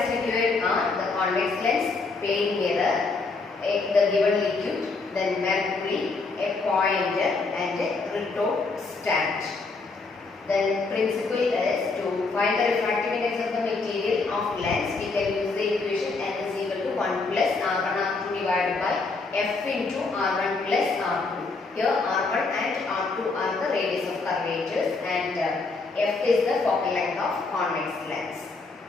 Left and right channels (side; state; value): right; quieter; 3.9 dB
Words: required are the convex lens, plane mirror, the given liquid, then mercury, a pointer and a retort stand. Then principle is to find the refractive index of the material of lens. We can use the equation n is equal to 1 plus r1 r2 divided by f into r1 plus r2. Here r1 and r2 are the radius of curvatures and f is the focal length of convex lens.